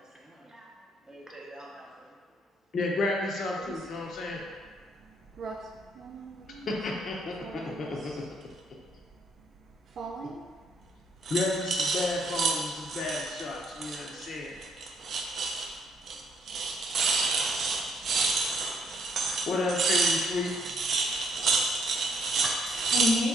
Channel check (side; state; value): both; normal; correlation 0.70